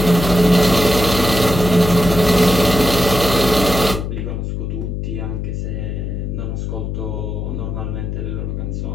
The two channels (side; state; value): left; noise; hum, 4 dB below the sound